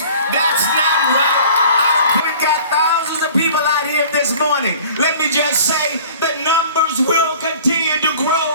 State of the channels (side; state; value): both; inverted; correlation -0.47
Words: That's not right. We've got thousands of people out here this morning. Let me just say the numbers will continue to